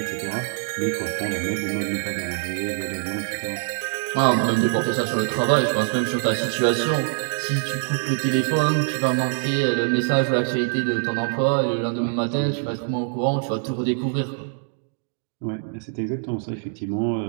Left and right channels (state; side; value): silent; left; 63 dB below the other